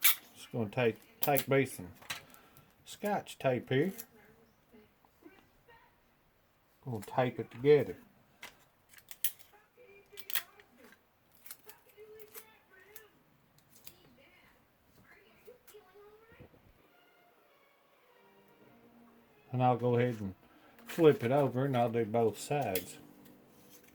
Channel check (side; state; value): both; identical; correlation 1.00